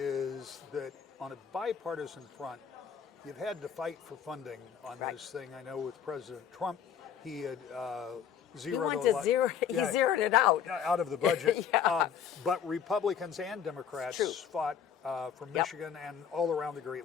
that on a bipartisan front, you've had to fight for funding on this thing. I know with President Trump, he had zeroed He zeroed it out of the budget. But Republicans and Democrats fought from Michigan and all around the Great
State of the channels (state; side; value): quieter; right; 8.1 dB